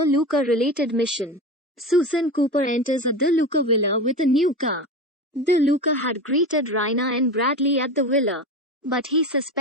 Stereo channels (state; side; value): normal; both; correlation 0.26